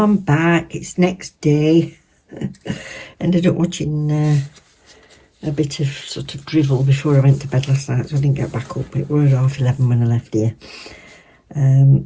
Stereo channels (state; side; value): identical; both; correlation 1.00